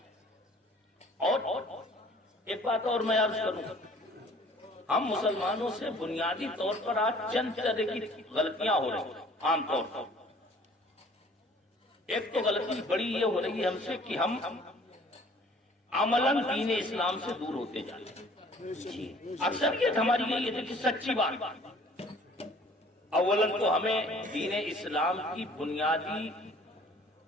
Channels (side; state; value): both; normal; correlation 0.53